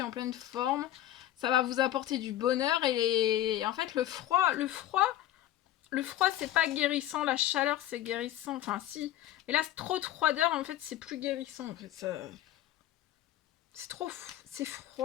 en pleine forme. Ça va vous apporter du bonheur. Et en fait, le froid, c'est pas guérissant. La chaleur, c'est guérissant. Enfin, si. Mais là, trop de froideur, en fait, c'est plus guérissant. En fait, ça... C'est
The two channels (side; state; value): right; quieter; 13.2 dB